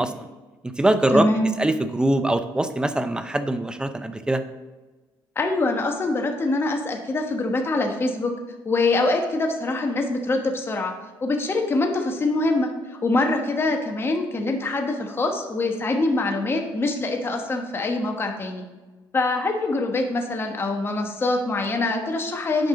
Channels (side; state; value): both; normal; correlation 0.76